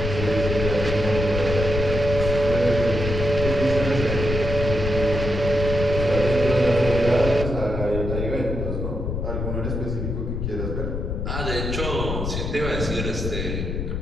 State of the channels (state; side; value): noise; left; rumble, 3 dB below the sound